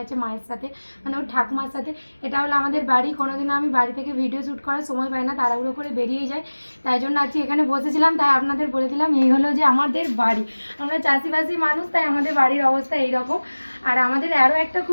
মায়ের সাথে, মানে ওর ঠাকুমার সাথে। এটা হলো আমাদের বাড়ি। কোনোদিনও আমি বাড়ি থেকে ভিডিও শ্যুট করার সময় পাই না, তাড়াহুড়ো করে বেরিয়ে যায়। তাই জন্য আজকে এখানে বসেছিলাম, তাই আপনাদের বলে দিলাম এই হলো যে আমাদের বাড়ি। আমরা চাষিবাসী মানুষ, তাই আমাদের বাড়ির অবস্থা এইরকম। আর আমাদের আরও একটা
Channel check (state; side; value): inverted; both; correlation -1.00